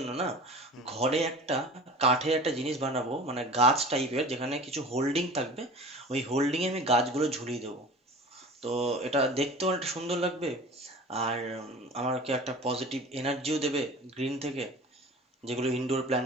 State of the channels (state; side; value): normal; both; correlation 0.39